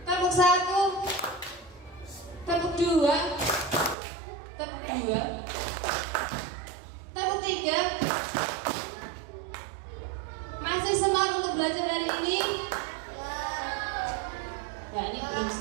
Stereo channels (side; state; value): left; drops out; at 4.0 s